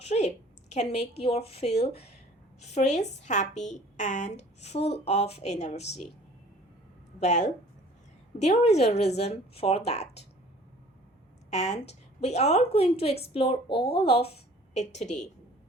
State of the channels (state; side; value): normal; both; correlation 0.50